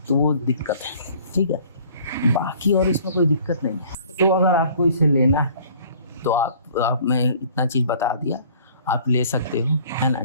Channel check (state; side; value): inverted; both; correlation -0.53